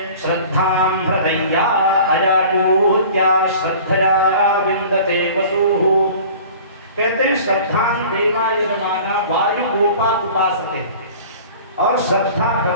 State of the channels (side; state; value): both; inverted; correlation -0.44